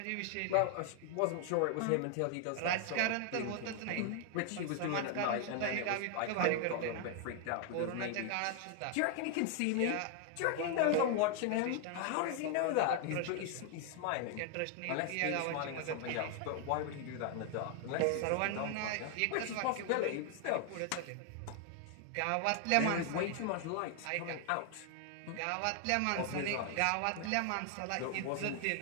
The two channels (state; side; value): different; both; correlation 0.00